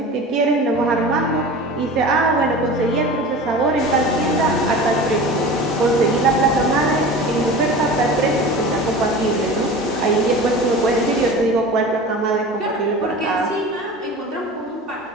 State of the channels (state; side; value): normal; both; correlation 0.35